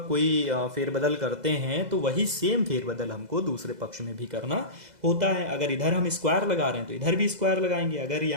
कोई फेरबदल करते हैं तो वही सेम फेरबदल हमको दूसरे पक्ष में भी करना होता है। अगर इधर हम स्क्वायर लगा रहे हैं तो इधर भी स्क्वायर लगाएंगे, अगर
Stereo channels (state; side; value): late; left; 2.0 ms